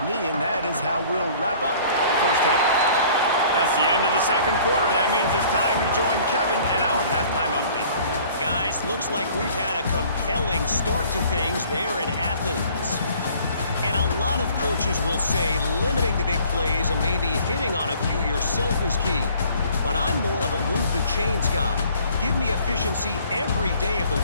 knee, and that is how we'll wrap up the 1st half. That's the end of the 2nd quarter. That means it's time to join Kevin and our halftime update. Guys, looks like we've had a compelling start to things there in Athens. And a lot of coaches will say limiting the big plays and maybe hitting on a few yourself is key. But I'm more of a move the chains guy. Give me efficiency every day of the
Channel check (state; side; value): inverted; both; correlation -0.54